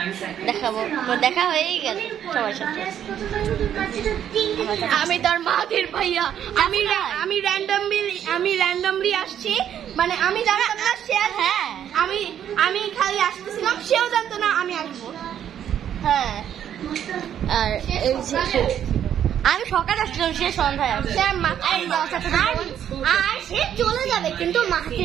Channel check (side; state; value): left; quieter; 9.8 dB